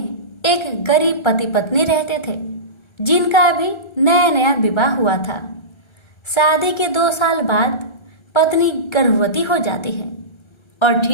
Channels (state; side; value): late; right; 1.3 ms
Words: एक गरीब पति पत्नी रहते थे जिनका अभी नया नया विवाह हुआ था। शादी के 2 साल बाद पत्नी गर्भवती हो जाती है और